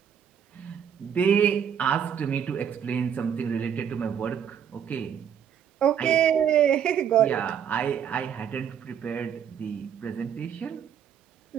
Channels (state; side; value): quieter; left; 8.4 dB